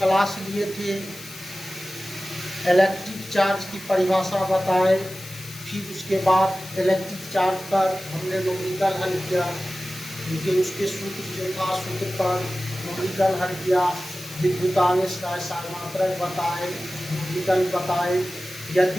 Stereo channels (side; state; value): left; noise; hiss, 16 dB below the sound